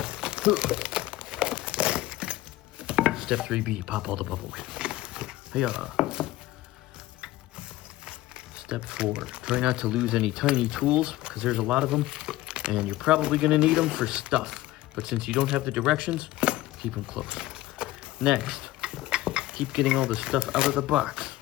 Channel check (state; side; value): quieter; right; 16.7 dB